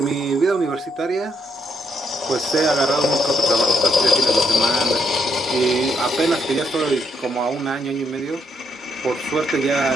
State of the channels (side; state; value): both; normal; correlation 0.75